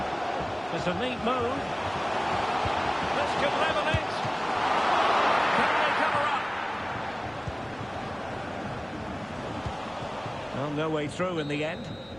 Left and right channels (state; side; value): noise; right; rumble, 28 dB below the sound